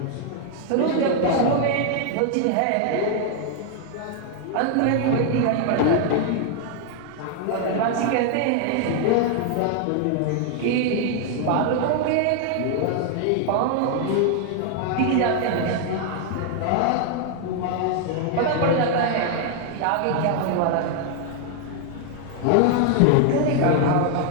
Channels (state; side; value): different; both; correlation 0.00